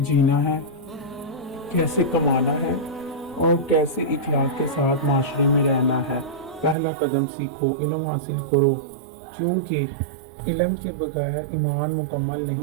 ہے، کیسے کمانا ہے اور کیسے اخلاق کے ساتھ معاشرے میں رہنا ہے۔ پہلا قدم سیکھو، علم حاصل کرو، کیونکہ علم کے بغیر ایمان مکمل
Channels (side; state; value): left; drops out; at 6.8 s